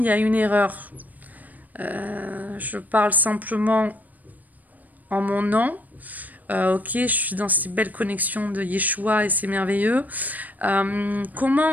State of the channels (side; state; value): left; late; 0.080 ms